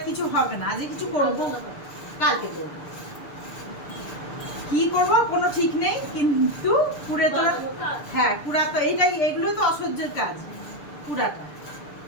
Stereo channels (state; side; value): late; right; 6.7 ms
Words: কিছু হবে না। আজকে কিছু করবো, কালকে করবো। কি করবো কোনো ঠিক নেই, কিন্তু কুড়ে তো, হ্যাঁ কুড়া তো এইটাই, এগুলো তো অসহ্যের কাজ।